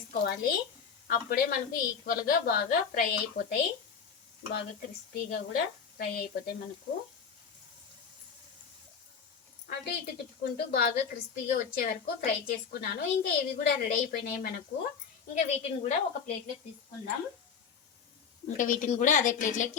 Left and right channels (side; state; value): right; quieter; 6.5 dB